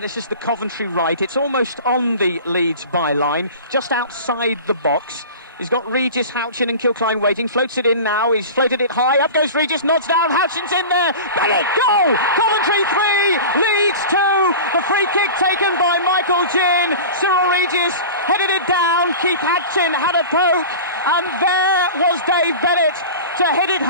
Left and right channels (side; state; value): both; inverted; correlation -0.34